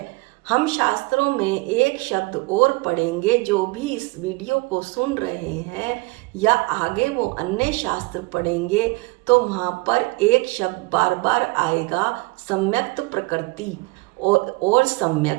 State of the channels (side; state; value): left; quieter; 24.6 dB